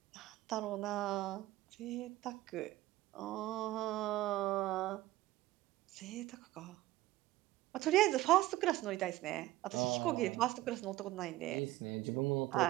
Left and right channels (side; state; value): left; quieter; 16.8 dB